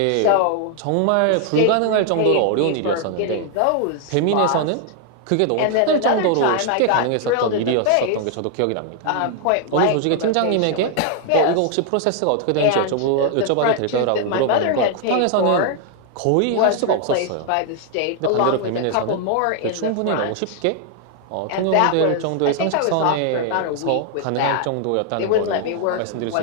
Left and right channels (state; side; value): different; both; correlation 0.00